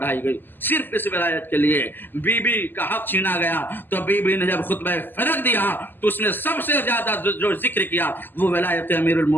گئی صرف اس ولایت کے لیے۔ بی بی کا حق چھینا گیا تو بی بی نے جب خطبہ فرق دیا تو اس نے سب سے زیادہ جو ذکر کیا وہ ولایت امیر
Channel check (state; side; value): late; right; 0.092 ms